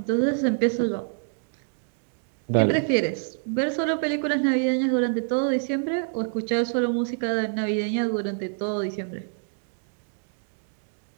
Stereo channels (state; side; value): silent; left; digital silence